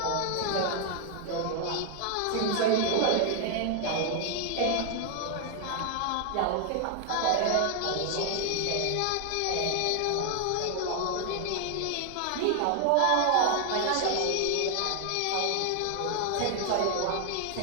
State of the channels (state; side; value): different; both; correlation 0.00